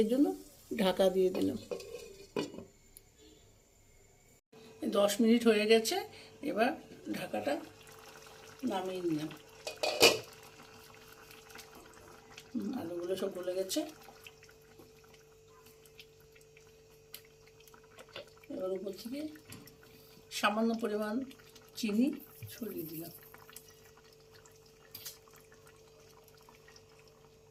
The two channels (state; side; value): identical; both; correlation 1.00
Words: জন্য ঢাকা দিয়ে দিলাম। 10 মিনিট হয়ে গেছে, এবার ঢাকাটা নামিয়ে নিলাম। আলুগুলো সব গলে গেছে। এবার উপর থেকে সামান্য পরিমাণ চিনি ছড়িয়ে দিলাম।